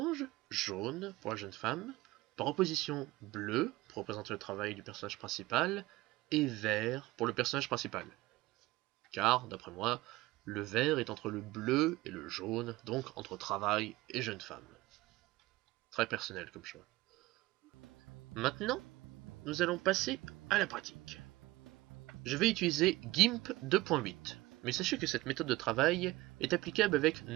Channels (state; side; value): quieter; left; 19.6 dB